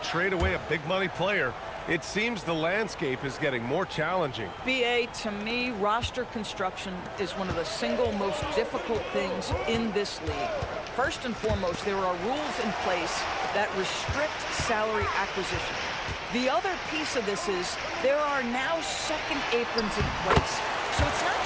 away a big money player. It seems the landscape is getting more challenging. BA, to me, roster construction is one of the single most difficult things in this league. First and foremost, there are rules in place that restrict salary acquisition. The other piece of this is there are now second aprons in place. So it's not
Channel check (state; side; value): identical; both; correlation 1.00